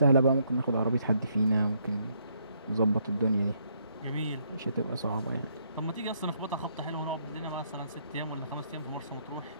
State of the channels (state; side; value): inverted; both; correlation -0.72